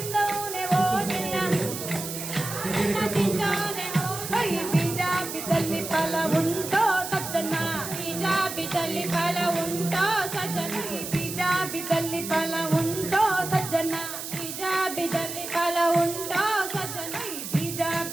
ಹೋಗಿಣ. ತಿಂದೋನೆ ಹೋಗಿ. ಹೈ ಬೀಜ ಬಿದ್ದಲ್ಲಿ ಫಲ ಉಂಟೋ ಸಜ್ಜನ. ಬೀಜ ಬಿದ್ದಲ್ಲಿ ಫಲ ಉಂಟೋ ಸಜ್ಜನ. ಬೀಜ ಬಿದ್ದಲ್ಲಿ ಫಲ ಉಂಟೋ ಸಜ್ಜನ. ಬೀಜ ಬಿದ್ದಲ್ಲಿ ಫಲ ಉಂಟೋ ಸಜ್ಜನ. ಬೀಜ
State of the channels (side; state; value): right; noise; hiss, 7 dB below the sound